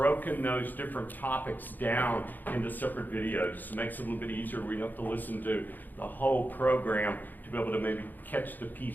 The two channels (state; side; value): late; right; 0.086 ms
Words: those different topics down into separate videos. So it makes it a little bit easier. We don't have to listen to the whole program to be able to maybe catch the